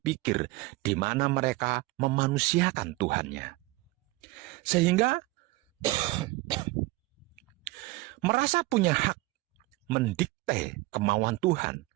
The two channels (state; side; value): quieter; left; 20.8 dB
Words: di mana mereka memanusiakan Tuhannya. Sehingga merasa punya hak mendikte kemauan Tuhan,